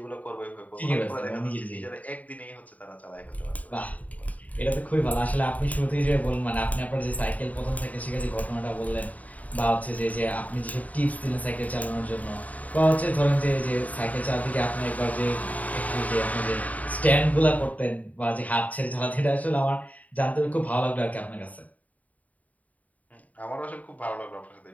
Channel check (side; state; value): right; late; 0.072 ms